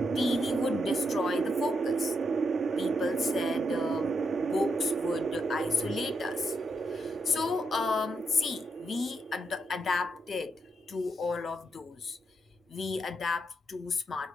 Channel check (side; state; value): both; normal; correlation 0.80